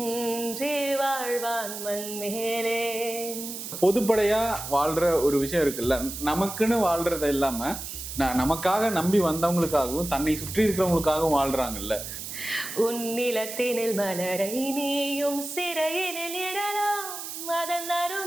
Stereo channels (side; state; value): right; noise; hiss, 8 dB below the sound